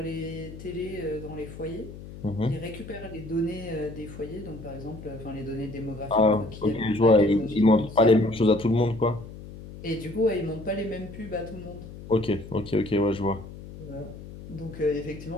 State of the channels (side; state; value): left; noise; hum, 14 dB below the sound